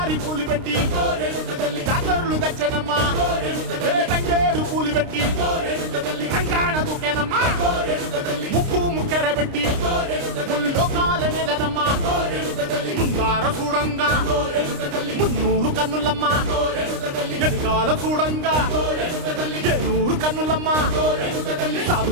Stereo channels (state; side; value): late; left; 29 ms